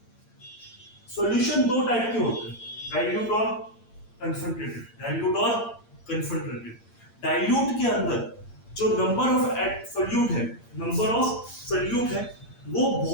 सॉल्यूशन दो टाइप के होते हैं, डाइल्यूट और कंसंट्रेटेड, डाइल्यूट और कंसंट्रेटेड। डाइल्यूट के अंदर जो नंबर ऑफ सोल्यूट है, नंबर ऑफ सोल्यूट है, वो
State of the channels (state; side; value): late; right; 8.7 ms